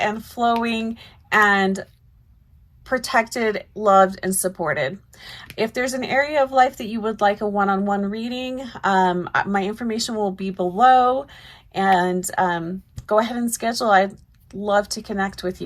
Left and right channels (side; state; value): both; identical; correlation 1.00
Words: flowing and protected, loved, and supported. If there's an area of life that you would like a one-on-one reading, my information will be below. And go ahead and schedule. I'd love to connect with